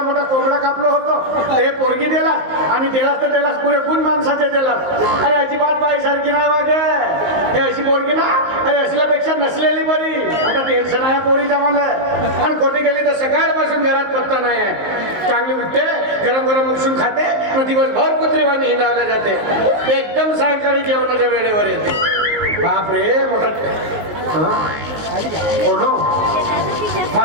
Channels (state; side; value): late; left; 19 ms